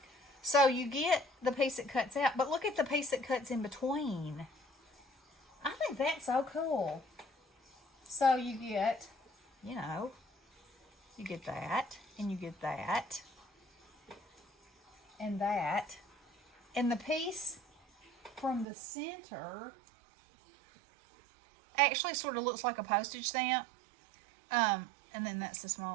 So you get the piece that cuts out, but look at the piece that cuts in between. I think that's so cool. So you get, you get that, and you get that, and that. And the piece from the center actually sort of looks like a postage stamp. And then that's the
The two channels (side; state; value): left; drops out; at 18.7 s